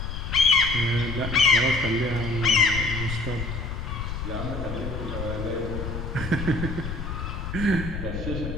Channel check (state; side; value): noise; left; rumble, 5 dB below the sound